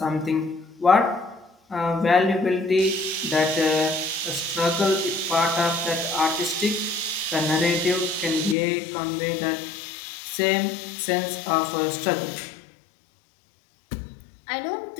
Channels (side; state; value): right; drops out; at 8.6 s